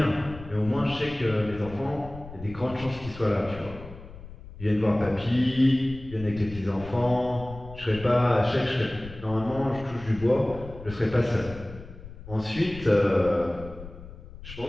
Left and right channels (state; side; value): noise; left; rumble, 15 dB below the sound